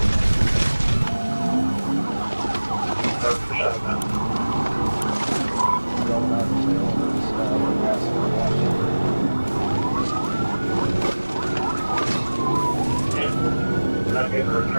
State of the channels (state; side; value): inverted; both; correlation -1.00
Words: That's the shot now. Going out of the middle of this, we're passing the Washington. Not getting a